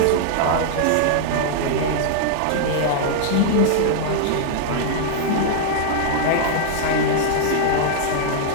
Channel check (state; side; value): different; both; correlation -0.01